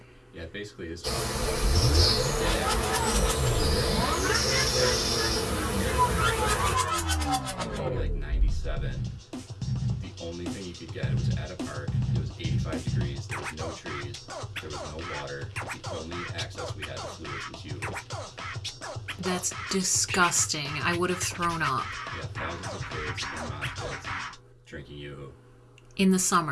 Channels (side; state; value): both; identical; correlation 1.00